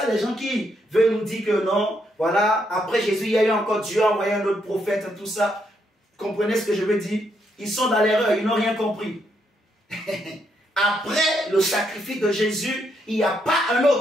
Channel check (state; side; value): normal; both; correlation 0.76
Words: les gens qui veulent nous dire que non, voilà, après Jésus, il y a eu encore Dieu a envoyé un autre prophète, tout ça. Comprenez ce que je veux dire? Ils sont dans l'erreur, ils n'ont rien compris. Après le sacrifice de Jésus, il n'y a pas un